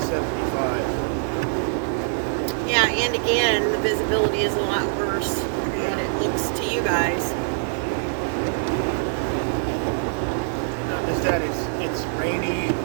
75. Yeah, and again, the visibility is a lot worse than what it looks to you guys. Not just that, it's rainy,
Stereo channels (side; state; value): left; silent; 63 dB below the other